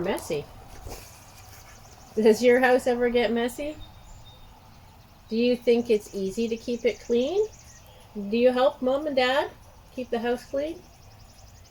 Does your house ever get messy? Do you think it's easy to keep it clean? Do you help Mom and Dad keep the house clean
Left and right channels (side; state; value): both; identical; correlation 1.00